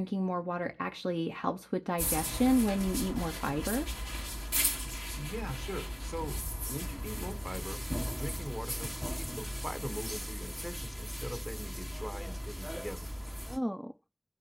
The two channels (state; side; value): identical; both; correlation 1.00